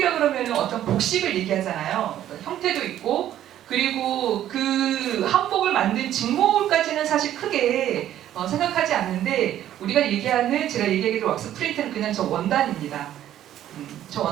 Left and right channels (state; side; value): quieter; left; 11.9 dB